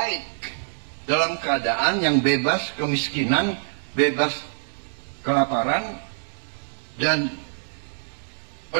dalam keadaan yang bebas kemiskinan, bebas kelaparan, dan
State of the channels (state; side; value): silent; left; digital silence